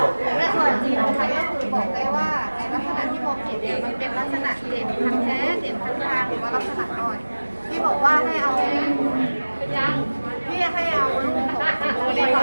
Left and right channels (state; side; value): inverted; both; correlation -1.00